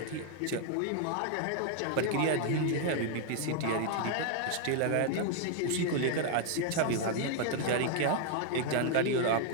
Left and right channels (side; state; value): both; different; correlation 0.00